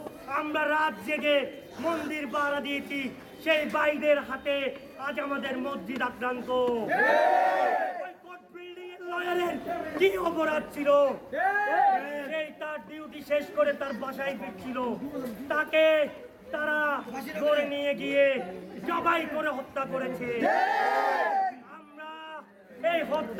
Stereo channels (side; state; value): both; identical; correlation 1.00